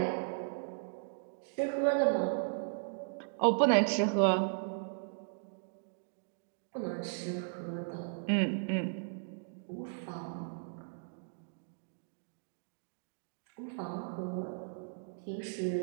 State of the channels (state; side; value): silent; left; digital silence